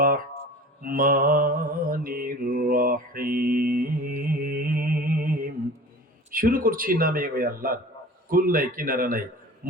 রাহমানির রহিম। শুরু করছি নামে ওই আল্লাহর, কুল নাই কিনারা নাই,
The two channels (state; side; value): normal; both; correlation 0.40